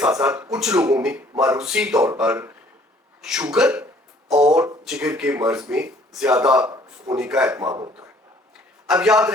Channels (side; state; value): both; normal; correlation 0.58